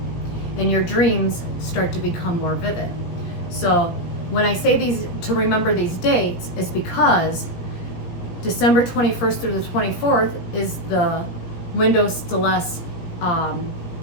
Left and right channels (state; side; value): late; right; 17 ms